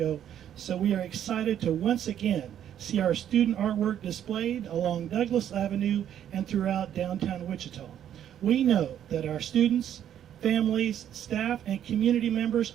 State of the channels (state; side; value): quieter; left; 10.2 dB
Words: so we are excited to once again see our student artwork displayed along Douglas Avenue and throughout downtown Wichita. We know that our students, families, staff, and community members